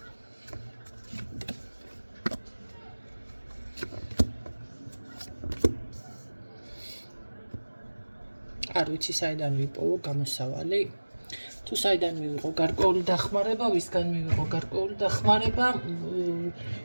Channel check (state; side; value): inverted; both; correlation -1.00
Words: არ ვიცი საიდან ვიპოვო გამოსავალი. თუ საიდან მივიღო გარკვეული დახმარება, ვისგან მივიღო გარკვეული დახმარება,